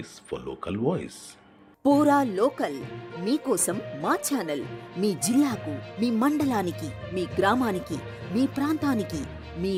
for local voice. Pura local మీకోసం మా ఛానల్. మీ జిల్లాకు, మీ మండలానికి, మీ గ్రామానికి, మీ ప్రాంతానికి, మీ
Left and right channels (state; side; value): identical; both; correlation 1.00